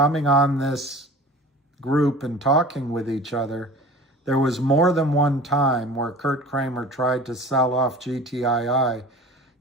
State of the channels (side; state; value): both; normal; correlation 0.40